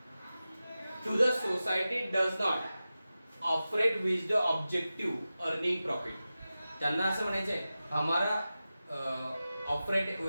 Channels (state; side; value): inverted; both; correlation -0.94